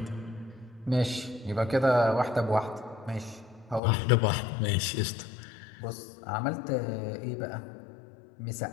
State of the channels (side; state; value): right; drops out; at 3.8 s